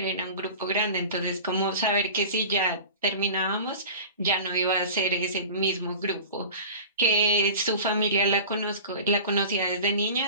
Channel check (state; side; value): inverted; both; correlation -0.36